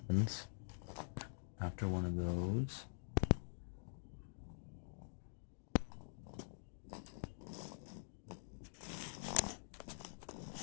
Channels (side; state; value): right; silent; digital silence